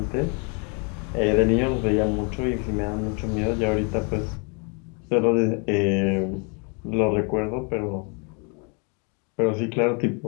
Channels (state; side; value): quieter; right; 35.4 dB